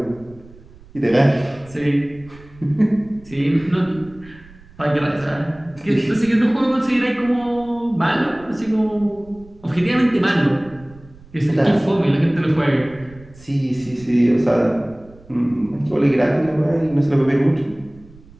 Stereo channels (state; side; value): noise; right; rumble, 23 dB below the sound